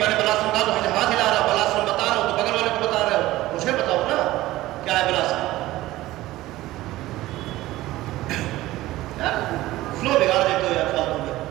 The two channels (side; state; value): left; quieter; 16.8 dB